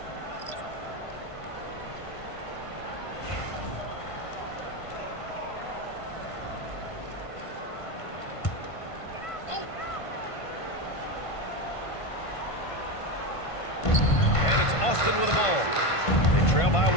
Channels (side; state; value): right; late; 1.5 ms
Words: Austin with the ball. They trail by 1.